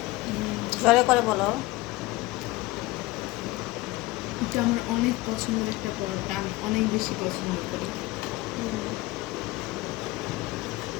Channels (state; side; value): quieter; right; 19.6 dB